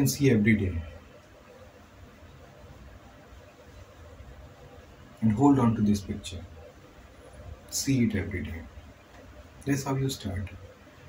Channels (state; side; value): identical; both; correlation 1.00